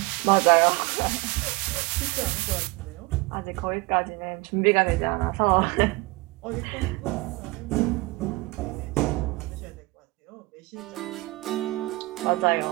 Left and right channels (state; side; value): quieter; left; 23.4 dB